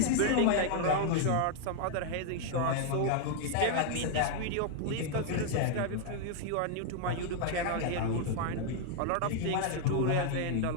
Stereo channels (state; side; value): different; both; correlation 0.00